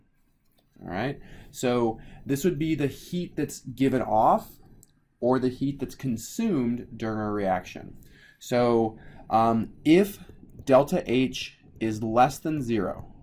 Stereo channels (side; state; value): both; identical; correlation 1.00